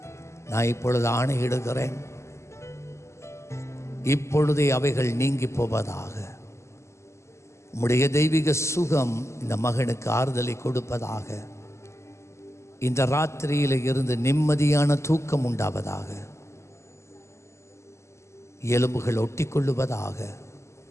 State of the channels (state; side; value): late; right; 0.13 ms